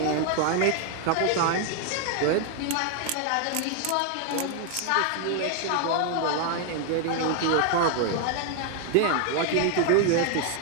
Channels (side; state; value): both; different; correlation 0.00